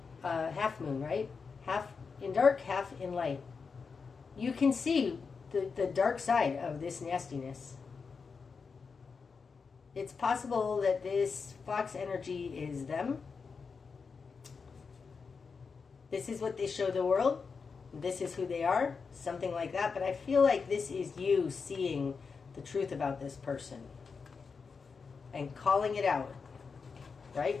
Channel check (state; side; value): quieter; right; 5.2 dB